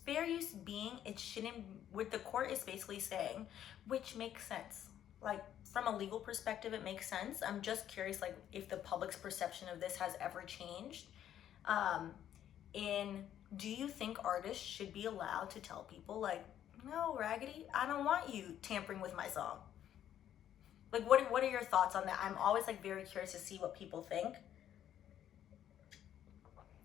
fair use being, it shouldn't, what the court is basically saying, which makes sense. Like, from a legal perspective, it makes sense. I'm just curious, like, if the public's perception of this has ever changed. Do you think artists should be allowed to tell people, like, no, Raggedy, I don't want you tampering with my song? Like, what are your thoughts on that? I'm always, like, very curious to see what people think.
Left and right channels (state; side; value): quieter; right; 10.7 dB